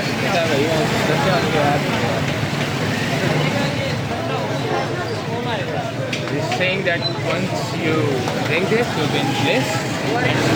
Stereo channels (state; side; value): identical; both; correlation 1.00